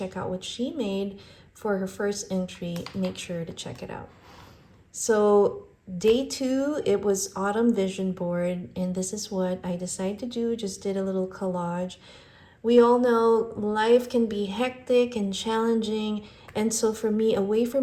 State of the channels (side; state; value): both; identical; correlation 1.00